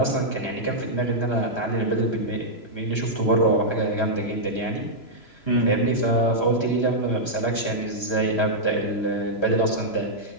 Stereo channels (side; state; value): right; late; 3.0 ms